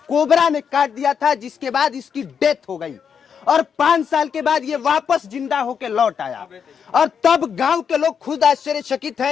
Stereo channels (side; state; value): right; quieter; 7.1 dB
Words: कोबरा ने काट दिया था, जिसके बाद इसकी डेथ हो गई और 5 साल के बाद ये वापस जिंदा होके लौट आया। और तब गांव के लोग खुद आश्चर्यचकित हैं।